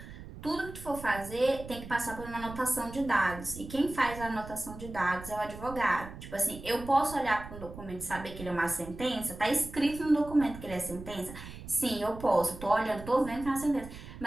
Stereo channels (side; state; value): right; noise; rumble, 13 dB below the sound